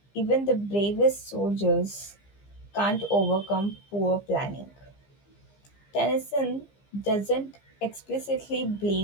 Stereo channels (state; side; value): late; right; 15 ms